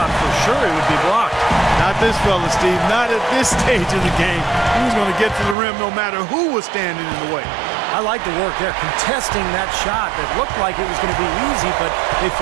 for sure it would be blocked. Not this fella, Steve. Not at this stage of the game. He was going to get to the rim no matter who was standing in the way. I like the work there, contesting that shot that looked like it was going to be easy, but they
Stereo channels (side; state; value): left; drops out; at 5.6 s